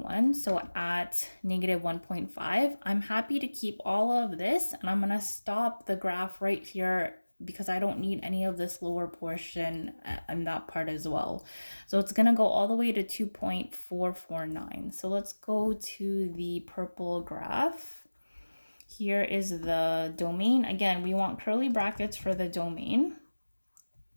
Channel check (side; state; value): both; inverted; correlation -1.00